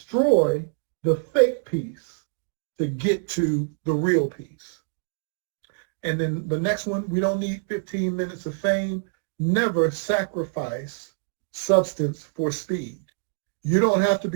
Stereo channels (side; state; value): left; silent; digital silence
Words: the fake peace to get to the real peace. And then the next one, we don't need 15 minutes of fame. Never sacrifice substance for speed. You don't have to